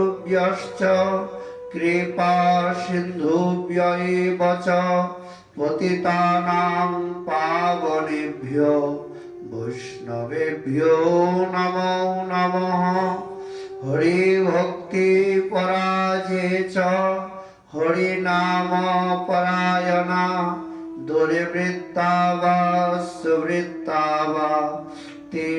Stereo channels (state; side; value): identical; both; correlation 1.00